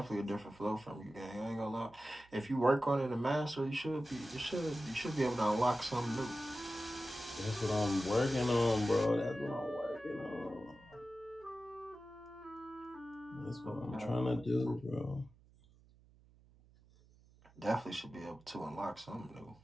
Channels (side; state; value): right; noise; hum, 27 dB below the sound